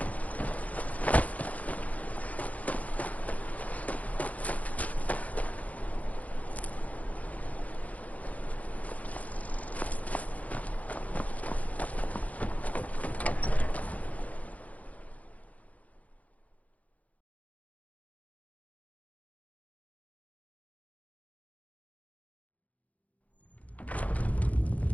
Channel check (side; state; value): right; late; 0.071 ms